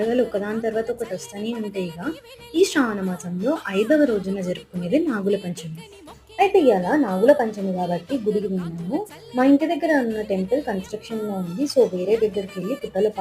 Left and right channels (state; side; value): identical; both; correlation 1.00